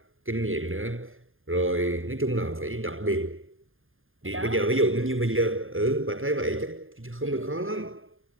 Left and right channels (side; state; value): left; late; 0.59 ms